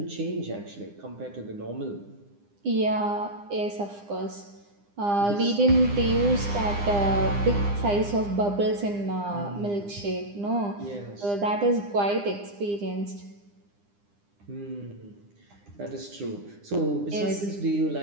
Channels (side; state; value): left; late; 9.9 ms